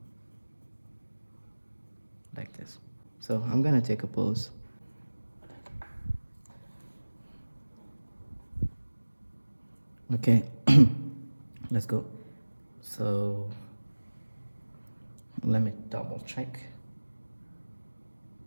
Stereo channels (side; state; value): both; inverted; correlation -1.00